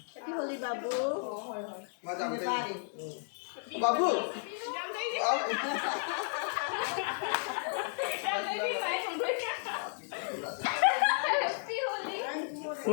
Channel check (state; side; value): silent; right; digital silence